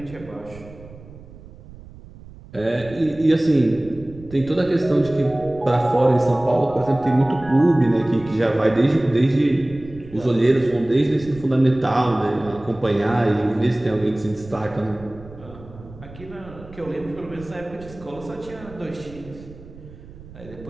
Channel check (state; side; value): noise; right; rumble, 18 dB below the sound